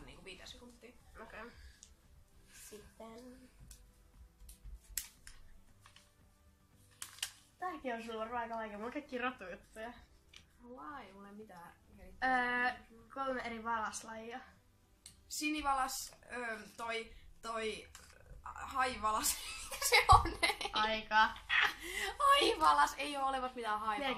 niinku 5 sekuntia. Okei. Sitten... Tääkin on sulla varmaan aika vaikea. Mulla on kaikki rotujuttuja. Vai, mulla ei mitään. 3 eri valaslajia. Sinivalas, toi haivalas. Se on Aika. haivalas, ei oo olevat mitään Meillä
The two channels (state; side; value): identical; both; correlation 1.00